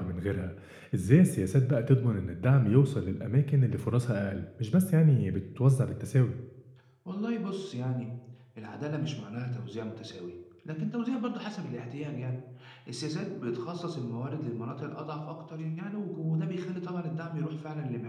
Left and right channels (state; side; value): identical; both; correlation 1.00